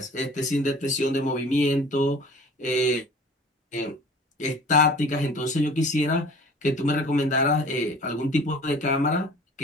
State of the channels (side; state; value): both; normal; correlation 0.46